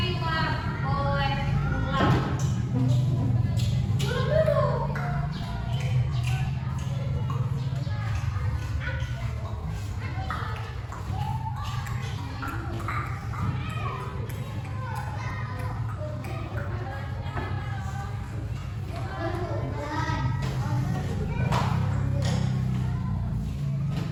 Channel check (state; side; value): identical; both; correlation 1.00